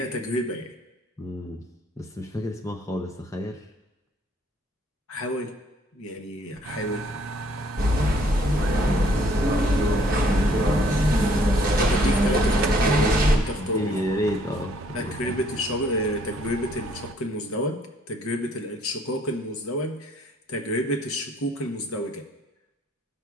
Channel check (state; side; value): normal; both; correlation 0.62